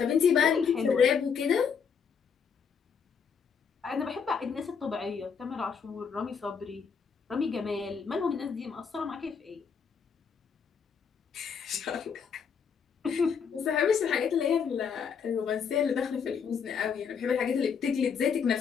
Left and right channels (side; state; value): right; quieter; 6.5 dB